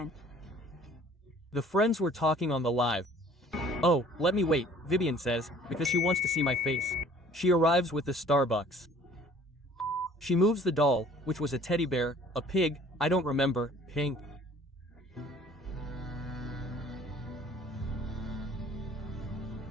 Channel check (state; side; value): normal; both; correlation 0.53